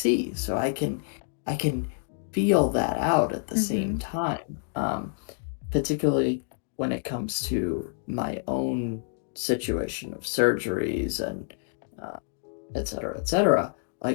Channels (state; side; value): silent; right; digital silence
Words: so I can feel that out at the Mm-hmm. same time. Particularly when it comes to my own situation of surgeries and uh, et cetera, et cetera.